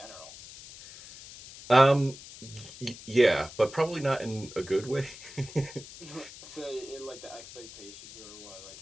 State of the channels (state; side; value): noise; left; hiss, 16 dB below the sound